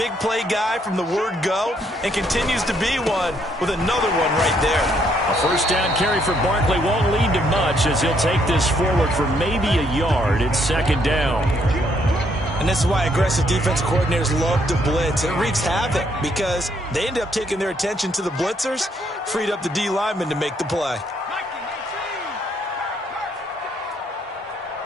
play guy from the word go and continues to be one with another one right there. A first down carry for Barkley won't lead to much as he'll take this forward for maybe a yard. It's 2nd down. And this is why aggressive defensive coordinators love to blitz. It wreaks havoc because they end up taking their attention to the blitzers, freed up the D lineman to make the play.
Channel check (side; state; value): both; normal; correlation 0.71